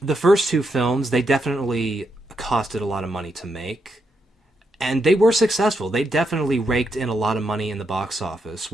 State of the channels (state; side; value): normal; both; correlation 0.81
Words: the first two films, they definitely costed a lot of money to make, and they were successful. They definitely raked in a lot of money in the box office